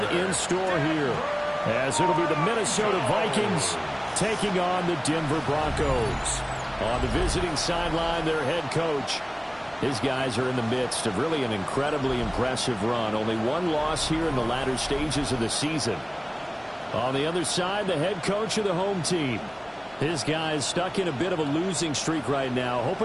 in store here, as it'll be the Minnesota Vikings taking on the Denver Broncos. On the visiting sideline, their head coach. His guys are in the midst of really an incredibly impressive run. Only one loss here in the latter stages of the season. On the other side, the head coach of the home team. His guys stuck in a bit of a losing streak right now,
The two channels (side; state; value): both; identical; correlation 1.00